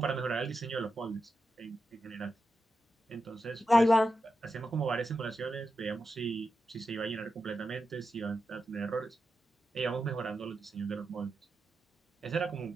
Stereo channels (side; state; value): both; normal; correlation 0.89